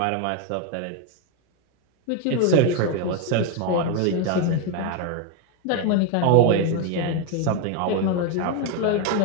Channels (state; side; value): different; both; correlation 0.02